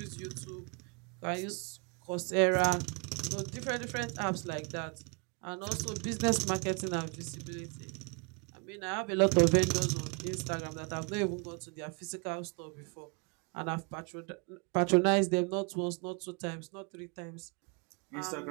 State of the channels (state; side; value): quieter; left; 33.6 dB